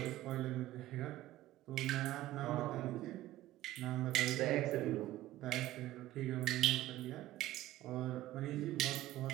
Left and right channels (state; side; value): quieter; left; 15.2 dB